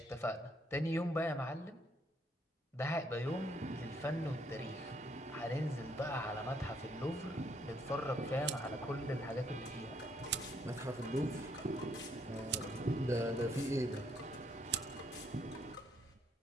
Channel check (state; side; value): normal; both; correlation 0.70